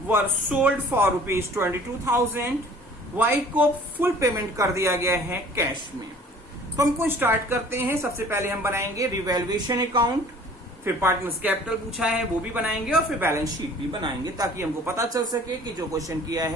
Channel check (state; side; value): normal; both; correlation 0.50